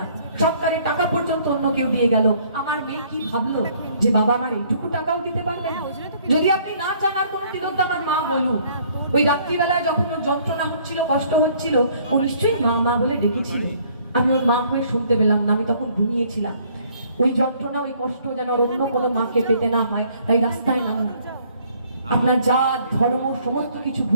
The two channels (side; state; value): both; inverted; correlation -0.61